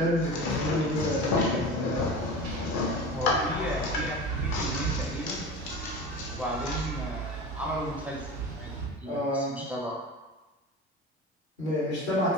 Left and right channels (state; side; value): normal; both; correlation 0.31